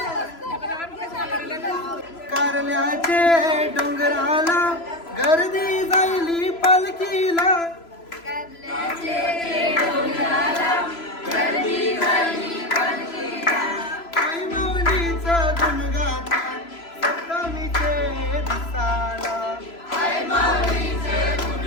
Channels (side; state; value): right; late; 3.0 ms